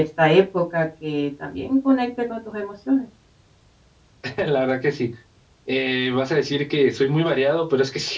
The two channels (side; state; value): both; identical; correlation 1.00